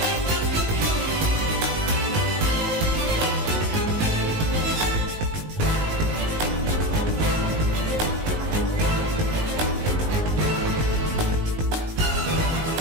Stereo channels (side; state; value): left; late; 19 ms